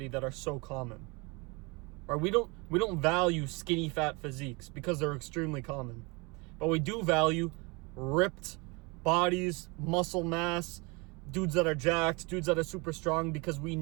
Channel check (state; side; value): quieter; left; 27.8 dB